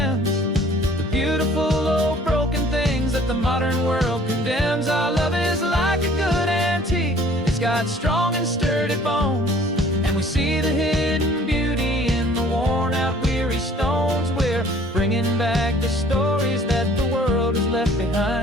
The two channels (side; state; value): both; normal; correlation 0.54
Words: the beautiful old broken things that the modern world condemns. Our love is like a good antique, it's got strong and sturdy bones. And we see the hidden beauty in the worn out weary stones. We're bringing back the stories that the world has left